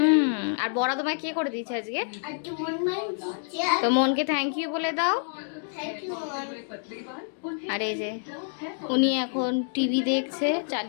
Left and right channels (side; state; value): right; silent; digital silence